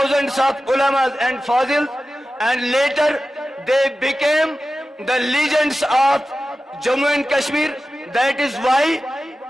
of ulamas and fazils, and later they became the legends of Jammu and Kashmir. That is why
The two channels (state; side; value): normal; both; correlation 0.94